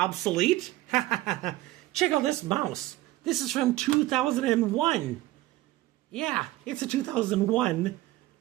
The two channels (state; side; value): quieter; left; 16.9 dB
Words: Check out this mouse. This is from 2001. Yeah, it's a 2001